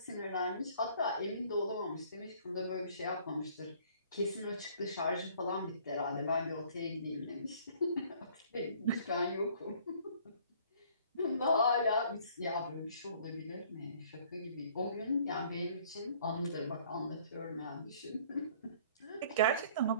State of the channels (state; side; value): inverted; both; correlation -0.56